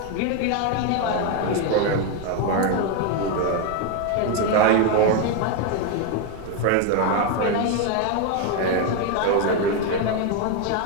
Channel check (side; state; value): both; different; correlation 0.02